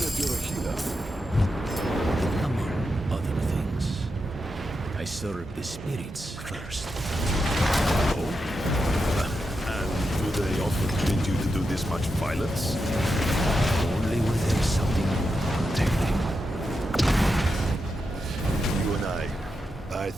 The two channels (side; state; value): both; normal; correlation 0.87